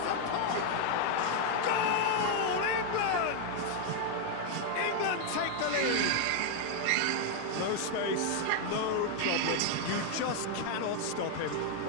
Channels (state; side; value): different; both; correlation 0.01